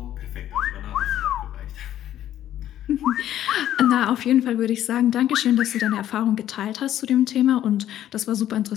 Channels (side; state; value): right; quieter; 11.9 dB